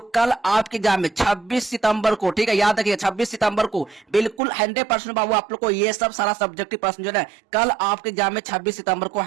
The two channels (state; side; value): drops out; left; at 4.4 s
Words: कल आपके एग्जाम में 26 सितंबर को, ठीक है, याद रखिए 26 सितंबर को बिल्कुल 100% बाबू आप लोग को ये सब सारा सब्जेक्टिव प्रश्न जो है कल आपके एग्जाम में 26 सितंबर को